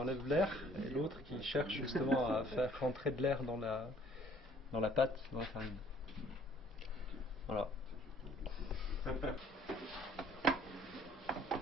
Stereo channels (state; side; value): normal; both; correlation 0.58